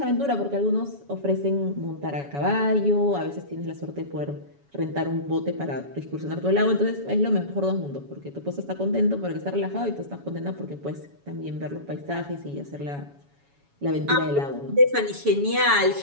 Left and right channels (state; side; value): late; left; 7.1 ms